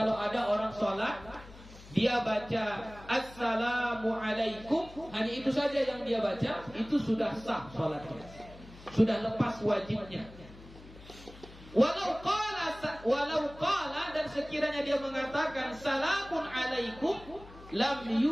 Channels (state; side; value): noise; left; hum, 19 dB below the sound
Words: ada orang sholat, dia baca assalamu alaikum, hanya itu saja yang dia baca, itu sudah sah sholatnya, sudah lepas wajibnya. Walau qala, dan sekiranya dia mengatakan salamun alaikum, lam